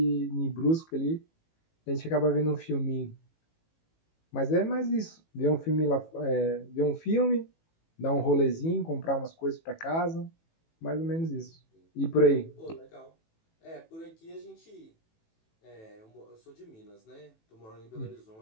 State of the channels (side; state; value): right; late; 18 ms